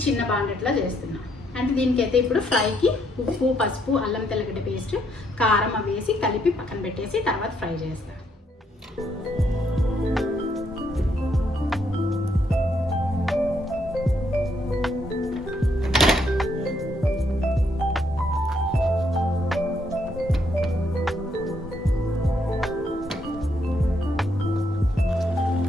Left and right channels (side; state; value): both; normal; correlation 0.73